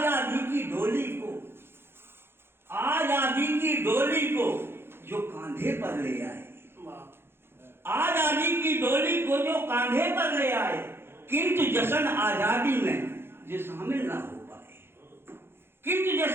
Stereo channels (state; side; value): late; left; 0.11 ms